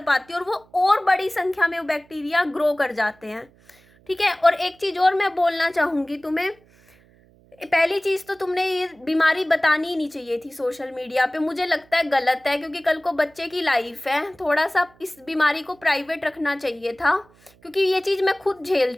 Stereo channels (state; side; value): noise; right; hum, 30 dB below the sound